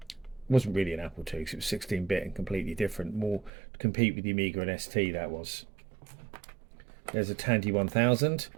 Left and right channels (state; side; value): drops out; left; at 3.5 s